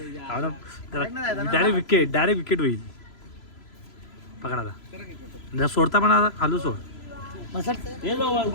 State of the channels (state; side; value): late; right; 3.0 ms